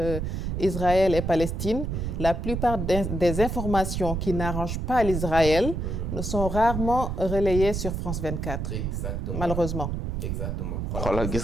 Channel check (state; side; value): noise; right; rumble, 3 dB below the sound